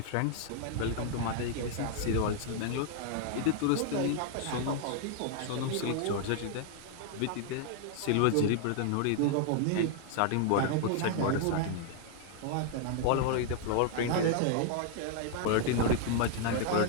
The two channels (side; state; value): both; different; correlation 0.00